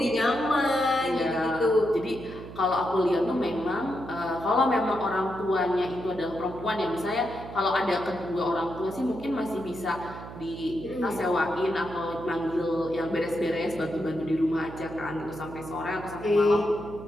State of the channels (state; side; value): noise; right; hum, 13 dB below the sound